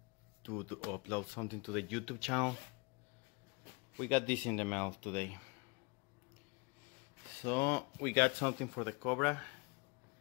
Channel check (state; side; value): quieter; right; 28.7 dB